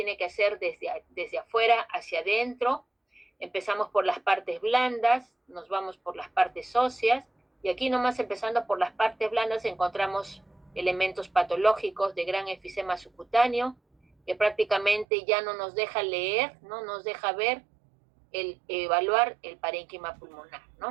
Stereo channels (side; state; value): left; drops out; at 15.1 s